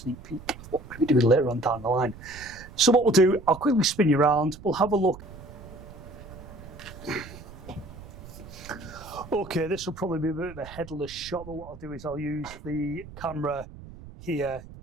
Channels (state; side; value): noise; right; rumble, 16 dB below the sound